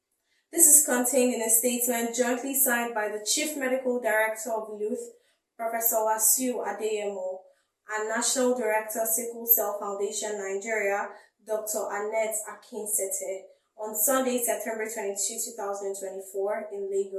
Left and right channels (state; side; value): identical; both; correlation 1.00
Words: This is contained in a statement jointly signed by the Chief Medical Director of Luth, Professor Wasiu Adeyemo, and National Director, Sickle Cell Foundation Nigeria, Dr. Annette Akinsete, on Sunday, September 22, 2024, in